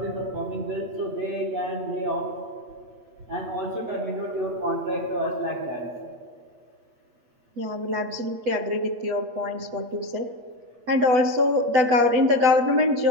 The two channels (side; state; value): left; late; 8.4 ms